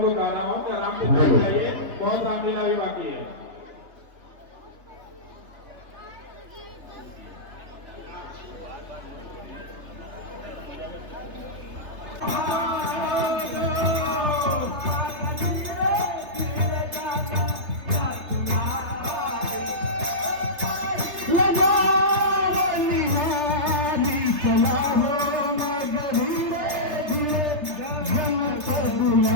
को कह रहा हूँ कि आराम से बैठ जाइए बहुत रामलीला भी बाकी है।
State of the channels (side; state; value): left; late; 3.5 ms